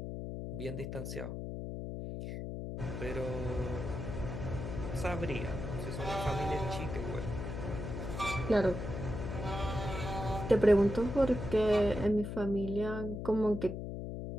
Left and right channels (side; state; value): left; noise; hum, 6 dB below the sound